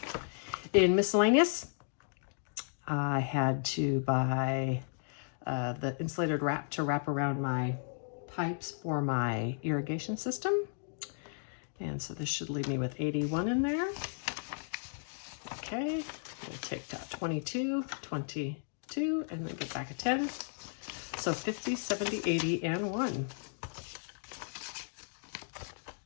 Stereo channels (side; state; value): right; silent; digital silence